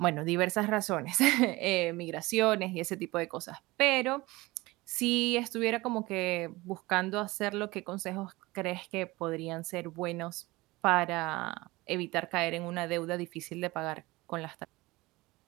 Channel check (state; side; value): quieter; left; 21.0 dB